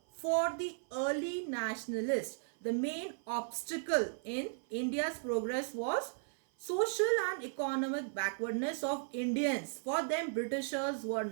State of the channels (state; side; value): silent; left; 54 dB below the other